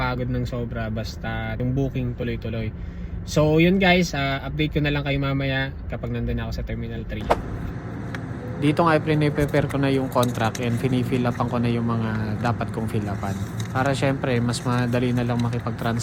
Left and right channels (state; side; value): identical; both; correlation 1.00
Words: ng sobra basta yung booking tuloy-tuloy. So yun guys, update ko na lang kayo mamaya kapag nandun ako sa Terminal 3. Dito nga i-prepare ko na yung contract and fini-fill upan ko na yung mga dapat kong fill upan. Para syempre mas madali na lang